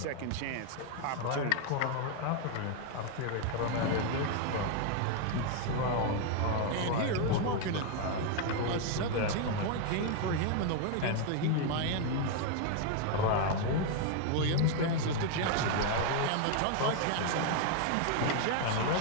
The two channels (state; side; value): different; both; correlation 0.01